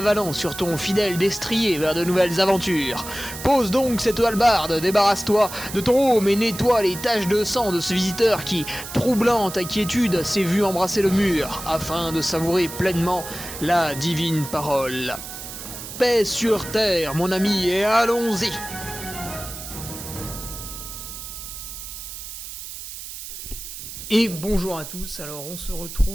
sur ton fidèle destrier vers de nouvelles aventures. Pose donc cette hallebarde, débarrasse-toi de ton home et nettoie les taches de sang de ce visiteur qui, troublant ta quiétude, s'est vu embrasser le mur afin de savourer pleinement la divine parole. Paix sur terre, mon ami, et allons-y! Et bonjour à tous, alors on se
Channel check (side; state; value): right; noise; hiss, 10 dB below the sound